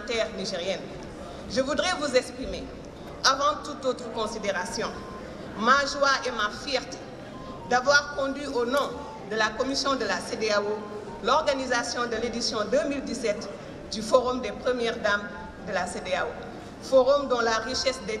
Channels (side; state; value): both; identical; correlation 1.00